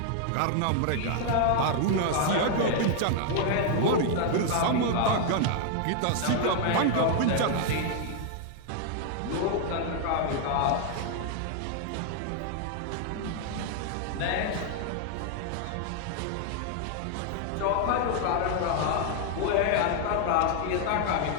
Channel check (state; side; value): different; both; correlation 0.00